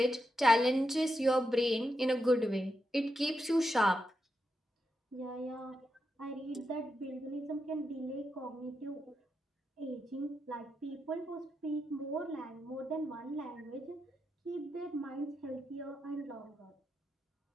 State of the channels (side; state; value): both; normal; correlation 0.85